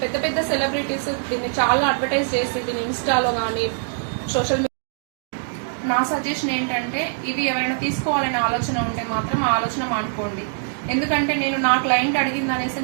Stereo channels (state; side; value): silent; left; digital silence